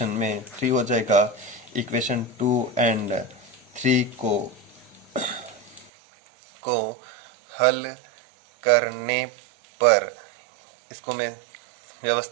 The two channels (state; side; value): drops out; left; at 5.9 s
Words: में 3 हो जाएगा। इक्वेशन 2 एंड 3 को हल करने पर इसको मैं